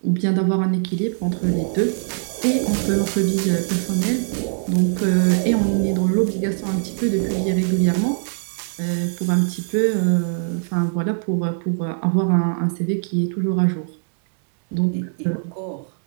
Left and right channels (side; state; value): left; silent; digital silence